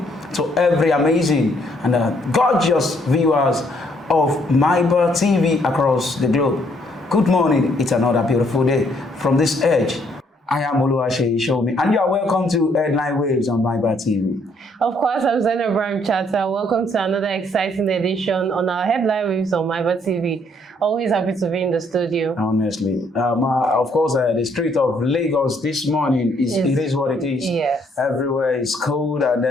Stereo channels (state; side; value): normal; both; correlation 0.68